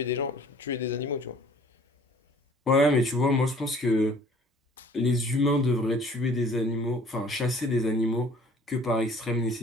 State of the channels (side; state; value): both; normal; correlation 0.53